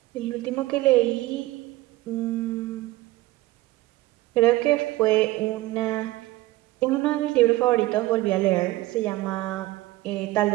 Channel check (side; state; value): left; quieter; 18.1 dB